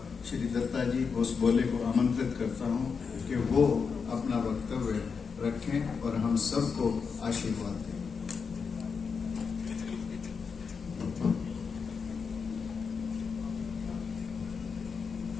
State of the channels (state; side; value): quieter; right; 5.6 dB